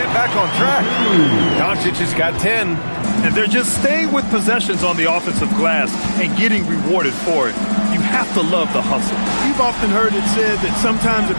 back on track. Doncic has got 10. And they're just staying with possessions on the offensive glass and getting rewarded for it. You have to love the hustle. You've often heard it said that sometimes it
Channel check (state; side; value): inverted; both; correlation -1.00